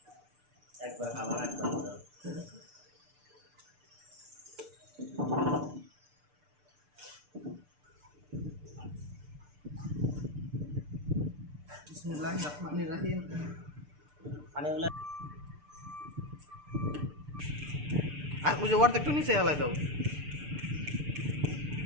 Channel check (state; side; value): late; left; 6.8 ms